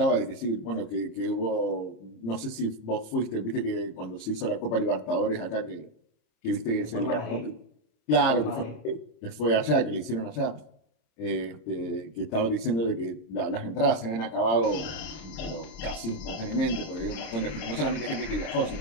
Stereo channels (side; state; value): right; late; 26 ms